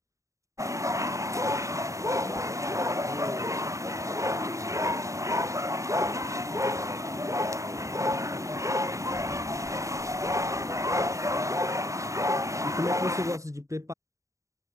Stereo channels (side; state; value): left; late; 0.15 ms